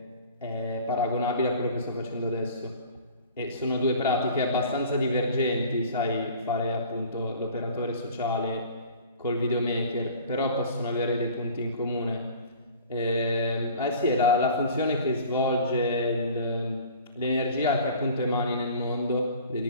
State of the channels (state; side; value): inverted; both; correlation -0.45